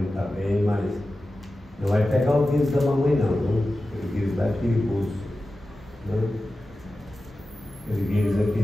está bem, mas não vai pegar o vírus da mamãe não, viu? Aquele vírus lá é perigoso, né? Aquele vírus é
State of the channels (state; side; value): normal; both; correlation 0.94